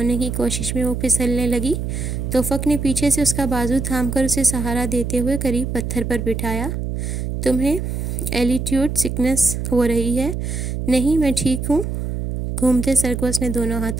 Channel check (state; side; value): noise; right; hum, 3 dB below the sound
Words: की कोशिश में वो फिसलने लगी। तोफ़क ने पीछे से उसका बाजू थामकर उसे सहारा देते हुए करीब पत्थर पर बिठाया। तुम्हें एल्टीट्यूड सिकनेस हो रही है? नहीं, मैं ठीक हूँ। घूमते सर को उसने दोनों